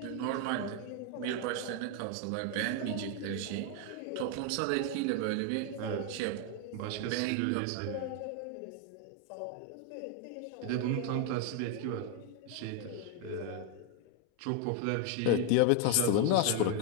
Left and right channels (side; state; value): both; different; correlation 0.01